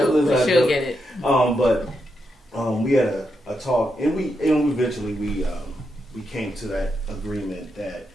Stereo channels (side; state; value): both; normal; correlation 0.84